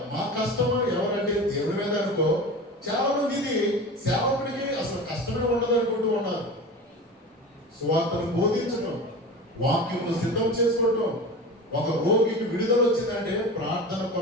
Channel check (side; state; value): both; normal; correlation 0.32